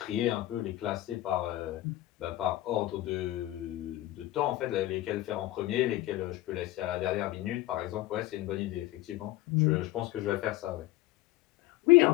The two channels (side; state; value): right; quieter; 16.4 dB